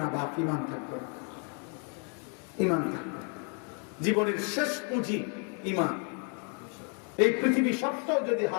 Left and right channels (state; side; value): quieter; right; 39.6 dB